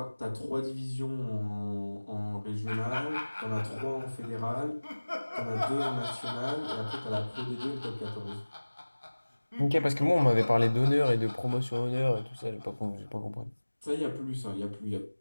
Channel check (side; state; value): both; inverted; correlation -1.00